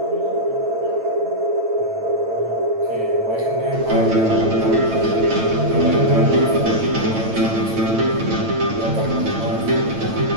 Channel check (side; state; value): left; late; 9.0 ms